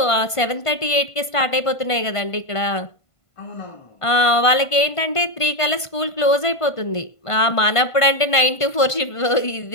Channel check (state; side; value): late; right; 1.5 ms